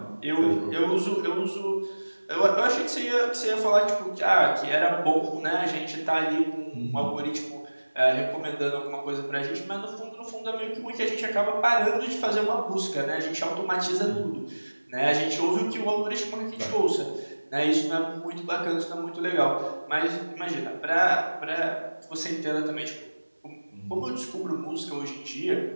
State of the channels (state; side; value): inverted; both; correlation -1.00